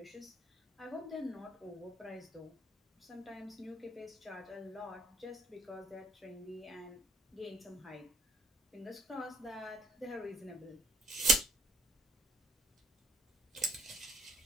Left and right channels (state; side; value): normal; both; correlation 0.63